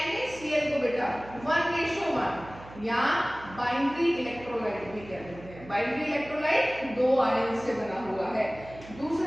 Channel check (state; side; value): noise; right; hum, 17 dB below the sound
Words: NaCl को बेटा 1:1 या बाइनरी इलेक्ट्रोलाइट भी कहते हैं। बाइनरी इलेक्ट्रोलाइट दो आयन से बना हुआ है।